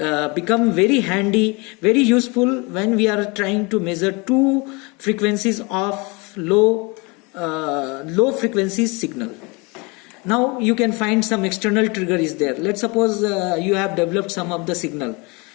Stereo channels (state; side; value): quieter; right; 28.0 dB